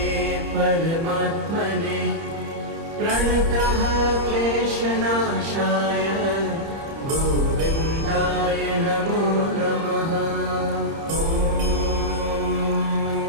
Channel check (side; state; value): left; late; 30 ms